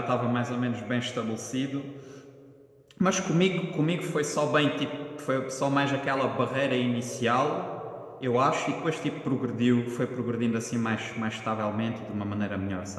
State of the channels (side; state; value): both; identical; correlation 1.00